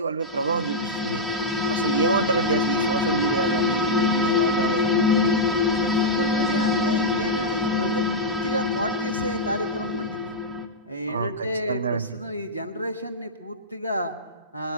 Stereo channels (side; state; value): both; normal; correlation -0.09